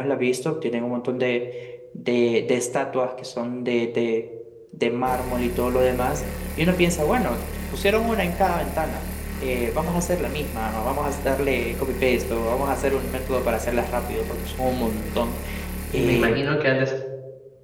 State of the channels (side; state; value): both; identical; correlation 1.00